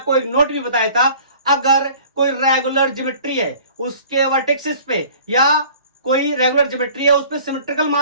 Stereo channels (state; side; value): inverted; both; correlation -0.48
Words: एक note भी बताया था, अगर कोई regular geometry है उसके वर्टेक्सेस पे, या कोई रेगुलर ज्योमेट्री है उस पे सिमेट्रिकल